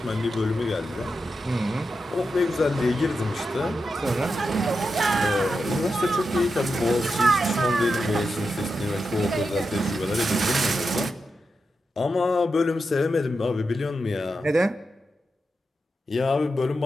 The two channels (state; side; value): normal; both; correlation 0.88